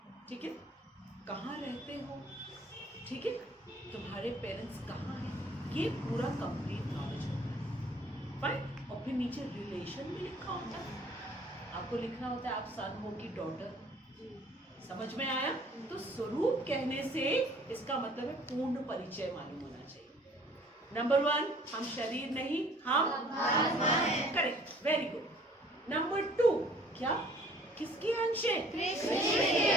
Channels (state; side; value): normal; both; correlation 0.54